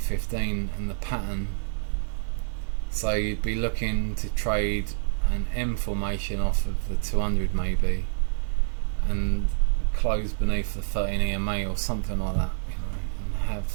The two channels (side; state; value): left; silent; 60 dB below the other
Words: and the pattern. So you'd be looking to trade an M formation off of the 200 maybe, and close beneath the 13 EMA or something like that, you know, and have